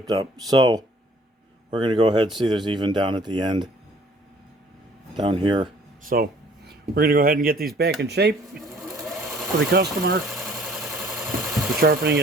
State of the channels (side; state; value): both; normal; correlation 0.56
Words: up. So, we're going to go ahead and see there's even down at the end. Down here. So, we're going to go ahead and get these back in shape for the customer. The sharpening